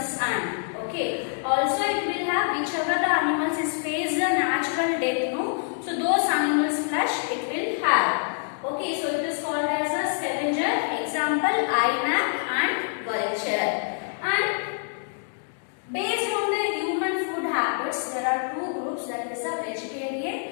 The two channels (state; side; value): silent; right; 61 dB below the other